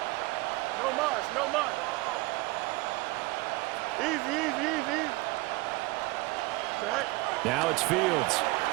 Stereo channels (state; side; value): quieter; left; 22.5 dB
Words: No much, no much. Easy, easy, easy. Right. Now it's Fields.